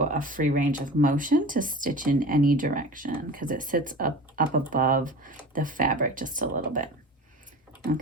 a free range of motion to stitch in any direction because it sits up above the fabric just a little bit.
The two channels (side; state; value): both; normal; correlation 0.36